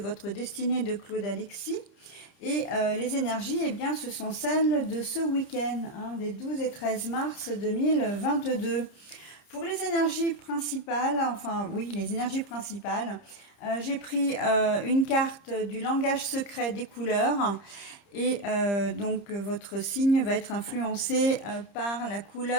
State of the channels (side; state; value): right; late; 30 ms